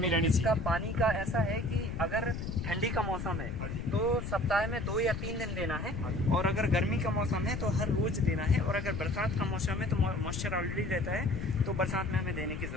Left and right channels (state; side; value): noise; left; rumble, 5 dB below the sound